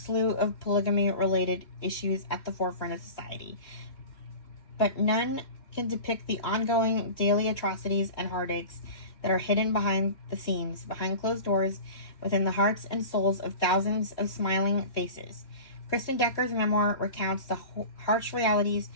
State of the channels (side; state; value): right; late; 3.1 ms